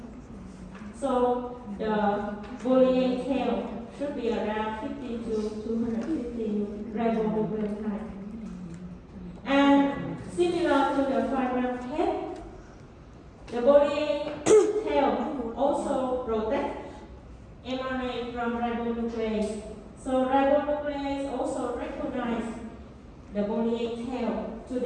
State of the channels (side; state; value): both; identical; correlation 1.00